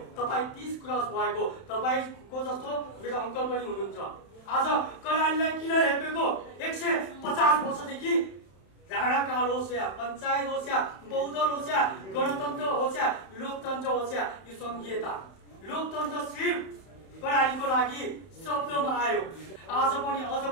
तपाईँ 30 क्रस भएको, तपाईँको जस्तो मेरो अङ्कल पनि हुनुहुन्छ। आज कर्णालीलाई किन हेपेको? 150 वर्षदेखि राणाकाल होस् या पञ्चायत होस् या बहुदल होस् या गणतन्त्र होस् या लोकतन्त्र होस् या यो सङ्घीयता, लोकतन्त्र सिर्फ कर्णालीको लागि शब्दमा आयो। आज पनि अझ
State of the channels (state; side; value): late; right; 31 ms